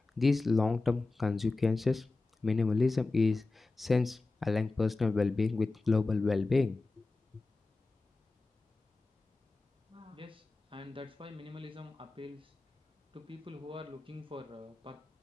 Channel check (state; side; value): quieter; right; 3.4 dB